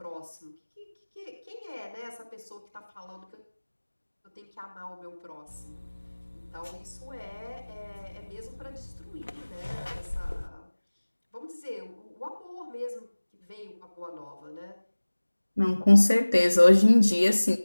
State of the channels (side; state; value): both; inverted; correlation -1.00